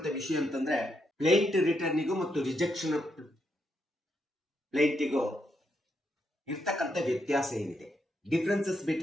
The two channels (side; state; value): both; normal; correlation 0.80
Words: ವಿಷಯ ಅಂತಂದ್ರೆ ಪ್ಲೇಂಟ್ ರಿಟರ್ನಿಗೂ ಮತ್ತು ರಿಜೆಕ್ಷನ್ ಪ್ಲೇಂಟಿಗೂ ಇರ್ತಕ್ಕಂಥ ವ್ಯತ್ಯಾಸ ಏನಿದೆ, differences